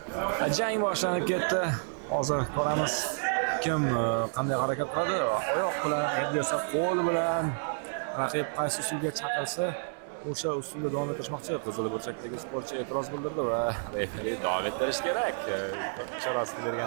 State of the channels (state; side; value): silent; left; 58 dB below the other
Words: Jang boshlanib ketdi. Hozir ko'ramiz kim qanday harakat qiladi. Oyoq bilan, endi esa qo'l bilan raqib qaysi usulga chaqirsa o'sha usulda davom ettirishmoqchi. Qizil burchakdagi sportchi e'tiroz bildirdi va referi davom ettirish kerak. Ishorasini